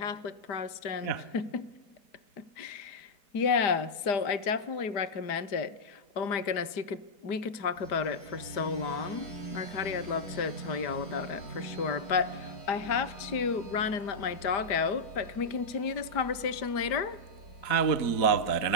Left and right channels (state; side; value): late; right; 5.0 ms